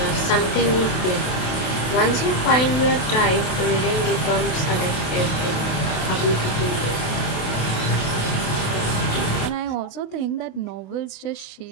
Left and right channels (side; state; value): right; late; 27 ms